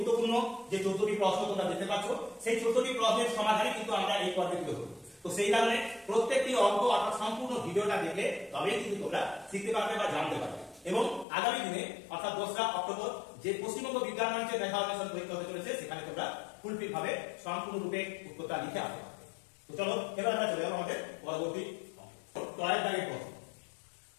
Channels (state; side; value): drops out; right; at 11.2 s